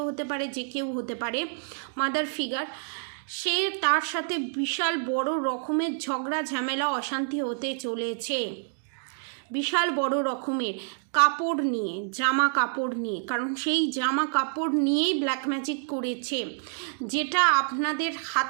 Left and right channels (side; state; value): left; silent; digital silence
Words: হতে পারে, যে কেউ হতে পারে, মাদার ফিগার, সে তার সাথে বিশাল বড় রকমের ঝগড়া ঝামেলা অশান্তি হতে চলেছে, বিশাল বড় রকমের কাপড় নিয়ে, জামা কাপড় নিয়ে, কারণ সেই জামা কাপড় নিয়েই ব্ল্যাক ম্যাজিক করেছে, যেটা আপনাদের